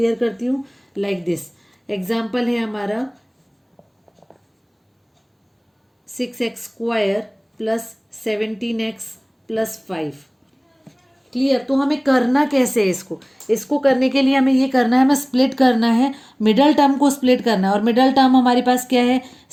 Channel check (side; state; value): both; identical; correlation 1.00